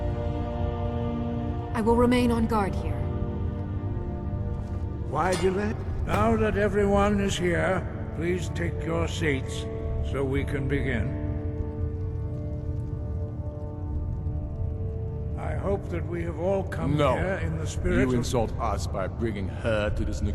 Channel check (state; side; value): identical; both; correlation 1.00